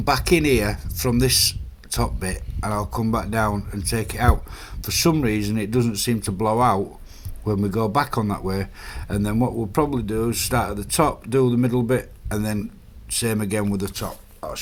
back in here from this top bit and I'll come back down and take it out. For some reason it doesn't seem to blow out when we go back on that way, and then what we'll probably do is start at the top, do the middle bit, and then same again with the top. I'll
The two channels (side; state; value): both; identical; correlation 1.00